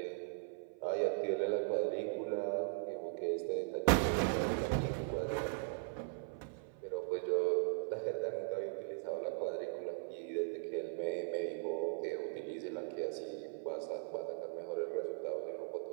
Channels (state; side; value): silent; left; 52 dB below the other